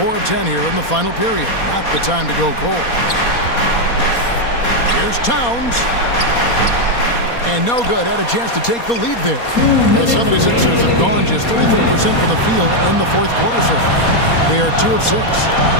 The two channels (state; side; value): late; right; 4.2 ms